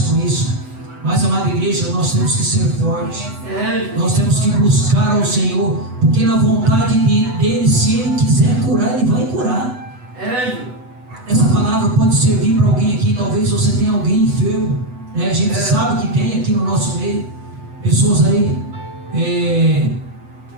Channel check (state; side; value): late; left; 8.0 ms